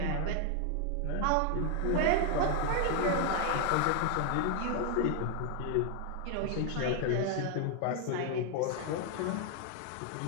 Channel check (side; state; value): both; different; correlation 0.00